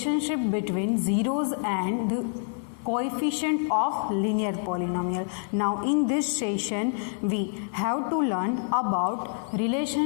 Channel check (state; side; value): silent; right; digital silence